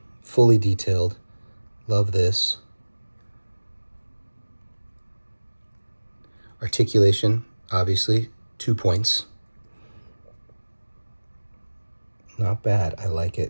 fully detailed. Love this. Articulation, obviously, 2 points. Not bad. I like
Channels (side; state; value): both; inverted; correlation -1.00